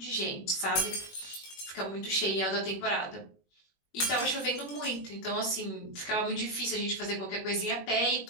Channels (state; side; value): late; right; 21 ms